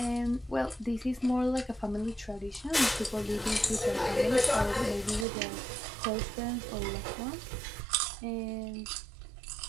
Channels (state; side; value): drops out; left; at 5.2 s